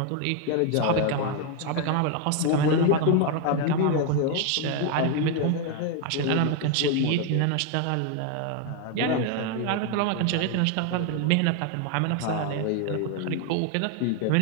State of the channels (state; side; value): different; both; correlation 0.01